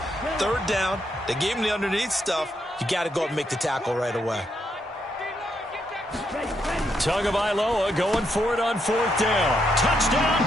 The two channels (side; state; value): both; normal; correlation 0.78